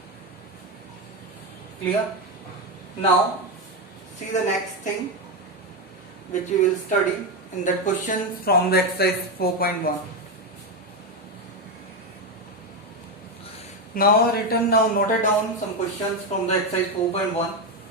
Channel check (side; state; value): both; normal; correlation 0.09